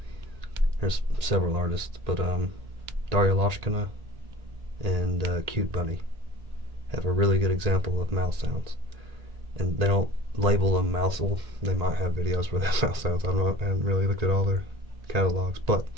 there's several artists, but Daria Loshkina and Cute Bunny have a really good example of mouth sounds, and they don't label them mouthful. They might have videos where they have mouth sounds. I haven't really looked at all their catalogs, but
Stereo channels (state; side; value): late; left; 1.8 ms